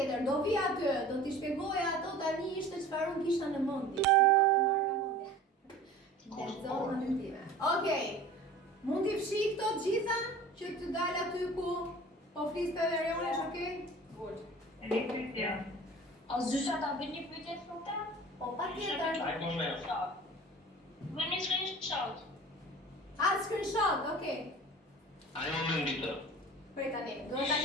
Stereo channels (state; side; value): normal; both; correlation 0.42